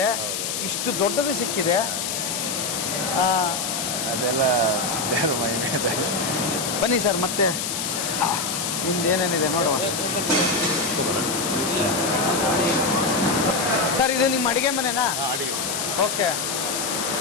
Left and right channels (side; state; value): left; noise; hiss, 2 dB below the sound